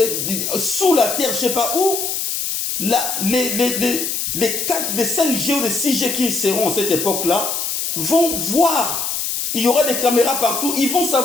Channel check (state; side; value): noise; left; hiss, 2 dB below the sound